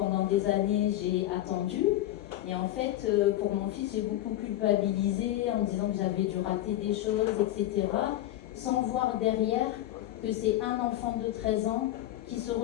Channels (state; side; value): quieter; right; 14.3 dB